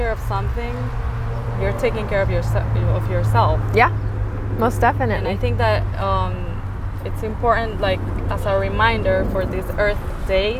of something, you're taking care of yourself. Yeah, most definitely. And I think that it's important, like as a reminder for this Earth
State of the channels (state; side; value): identical; both; correlation 1.00